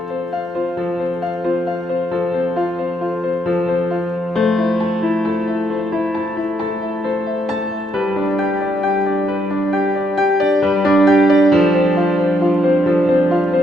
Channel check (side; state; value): both; normal; correlation 0.74